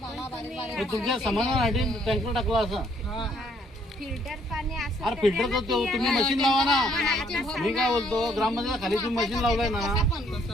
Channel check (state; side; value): normal; both; correlation 0.66